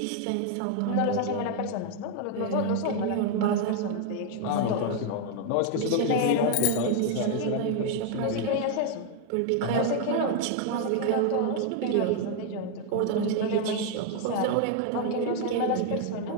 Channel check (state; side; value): different; both; correlation 0.01